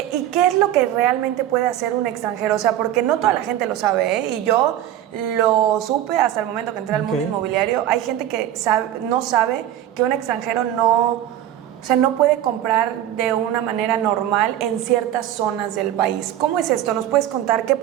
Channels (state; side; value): quieter; left; 12.0 dB